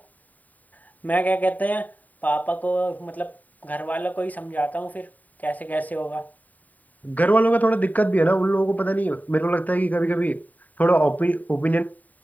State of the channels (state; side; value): late; right; 0.077 ms